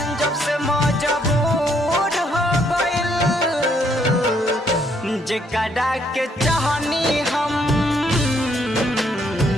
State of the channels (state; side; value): normal; both; correlation 0.70